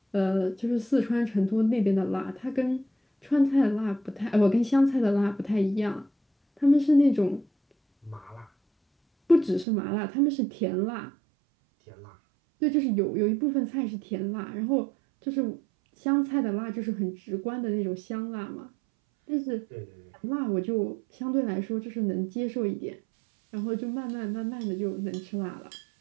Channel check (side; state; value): left; drops out; at 9.7 s